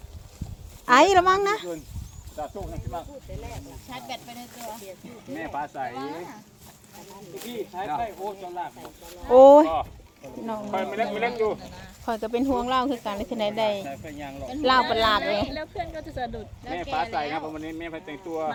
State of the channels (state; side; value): identical; both; correlation 1.00